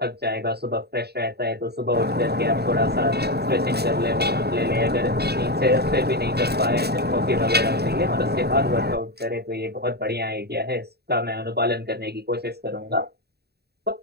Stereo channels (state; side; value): late; left; 0.47 ms